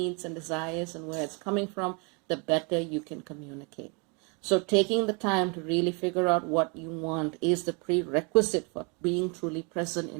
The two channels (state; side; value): quieter; left; 33.1 dB